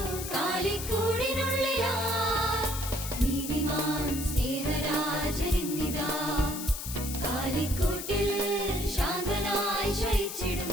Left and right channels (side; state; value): left; noise; hiss, 7 dB below the sound